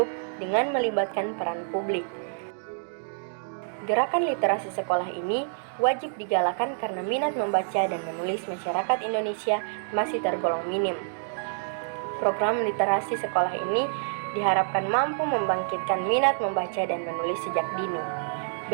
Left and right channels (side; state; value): left; silent; digital silence